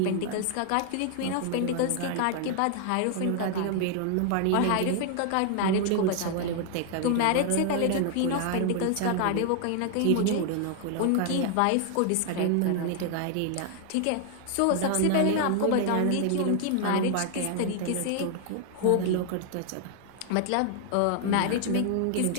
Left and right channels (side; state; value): both; different; correlation 0.00